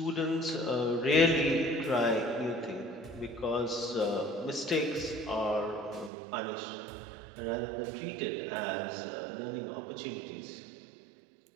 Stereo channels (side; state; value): left; drops out; at 6.1 s